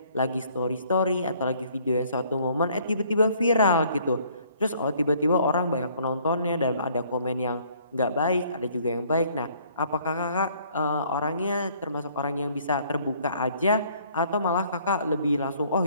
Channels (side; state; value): both; inverted; correlation -0.61